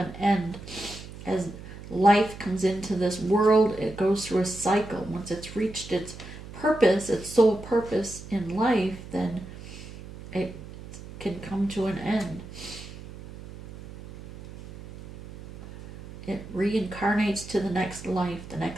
end. As life comes into this world, it goes through a cycle. Once it's reached its purpose, its sole purpose in life, then it can come to an end. It reincarnates to the next life, the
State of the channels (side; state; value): right; noise; hum, 14 dB below the sound